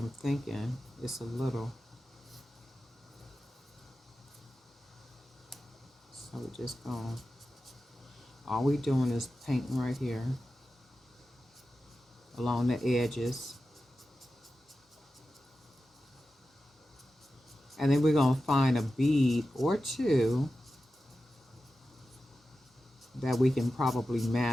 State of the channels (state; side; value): normal; both; correlation 0.93